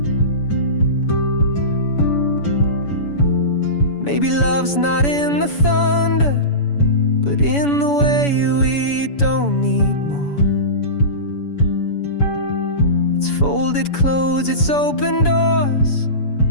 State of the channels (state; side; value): late; right; 7.0 ms